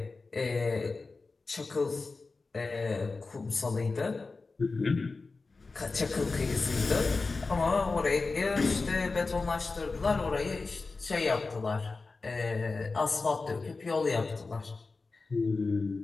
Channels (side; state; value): right; quieter; 3.9 dB